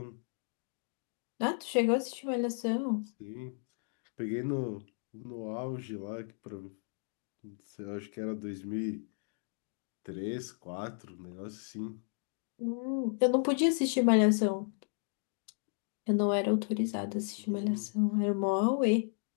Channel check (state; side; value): silent; right; 55 dB below the other